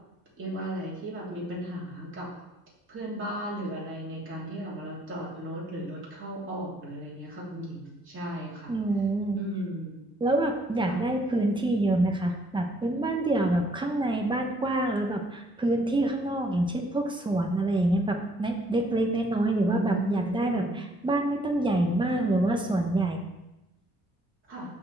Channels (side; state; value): both; normal; correlation 0.66